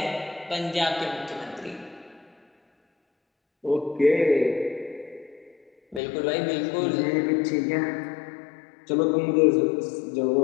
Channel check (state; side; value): drops out; right; at 6.0 s